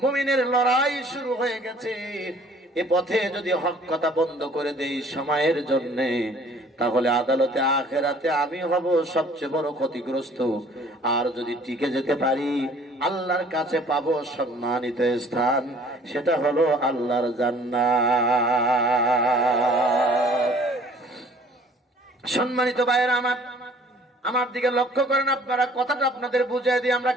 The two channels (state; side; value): normal; both; correlation 0.54